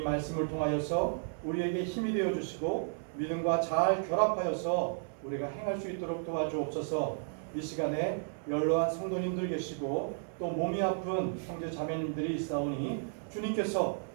말씀을 통하여서 우리에게 힘이 되어 주시고 믿음과 잘 결합하여서 우리가 행할 수 있도록 도와주옵소서. 이 시간에 연로한 성도님들 계시고 또 몸이 아픈 형제 자매님들이 있사오니 주님께서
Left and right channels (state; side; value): silent; left; 56 dB below the other